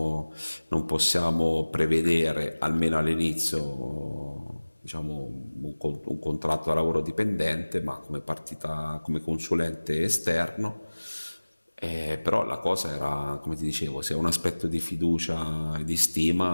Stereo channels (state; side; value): inverted; both; correlation -1.00